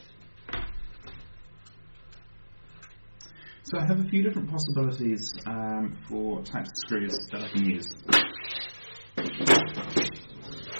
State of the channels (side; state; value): both; inverted; correlation -1.00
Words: So I have a few different possibilities for types of screws that I can use.